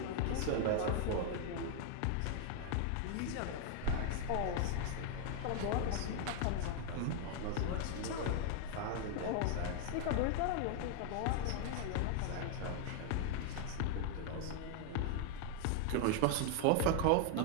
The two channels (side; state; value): both; different; correlation 0.00